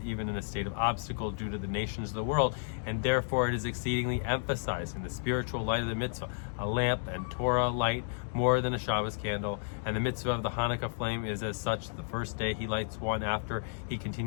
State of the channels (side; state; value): right; silent; digital silence